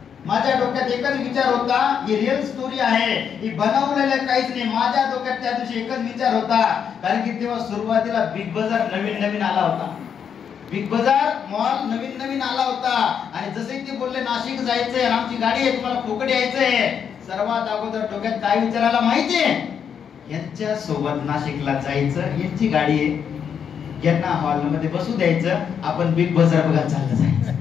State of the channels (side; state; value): right; quieter; 7.6 dB